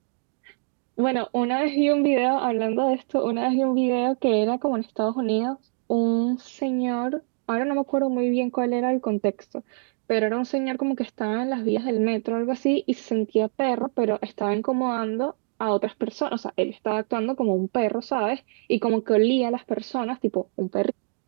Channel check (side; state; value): left; silent; 62 dB below the other